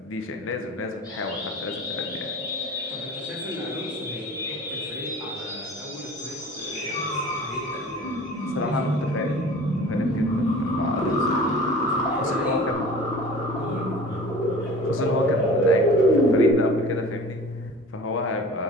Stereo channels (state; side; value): normal; both; correlation 0.42